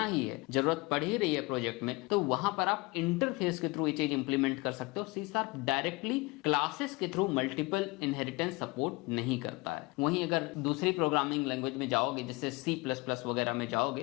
ही है, जरूरत पड़ ही रही है प्रोजेक्ट में, तो वहां पर आप इंटरफेस के थ्रू ये चीज इंप्लीमेंट कर सकते हो। सी शार्प डायरेक्टली क्लासेस के थ्रू मल्टीपल इनहेरिटेंस सपोर्ट नहीं करता है। वहीं अगर दूसरी प्रोग्रामिंग लैंग्वेज में जाओगे, जैसे C++ वगैरह में जाओगे,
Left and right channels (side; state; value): right; quieter; 24.6 dB